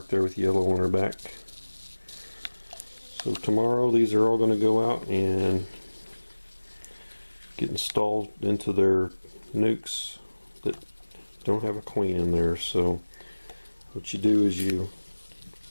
there with yellow on her back. So tomorrow these are all going to go out and get installed into their Nucs that don't have a queen in there. So what you do is you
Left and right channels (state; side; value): inverted; both; correlation -1.00